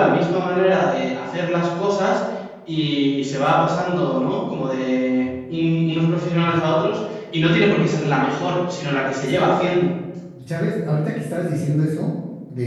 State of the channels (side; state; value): both; identical; correlation 1.00